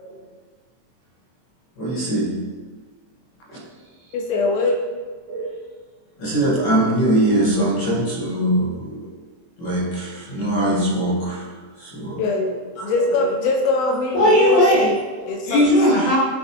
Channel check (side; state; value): right; late; 23 ms